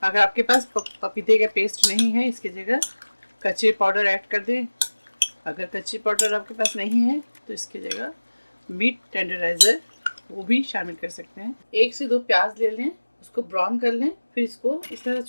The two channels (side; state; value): both; inverted; correlation -1.00